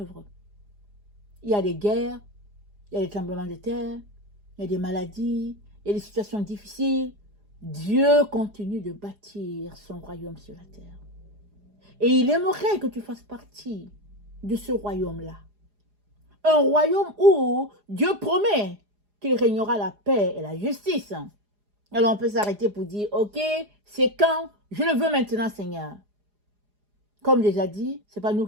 Il y a des guerres, il y a des tremblements de terre, il y a des maladies, il y a des situations difficiles. Dieu continue de bâtir son royaume sur la terre. Et il aimerait que tu fasses partie de ce royaume-là. Un royaume où Dieu promet qu'il régnera la paix et la justice. Alors on peut s'arrêter pour dire, ok, c'est quand? Je le veux maintenant, Seigneur. Comme déjà dit, ce n'est pas nous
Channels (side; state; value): left; late; 4.9 ms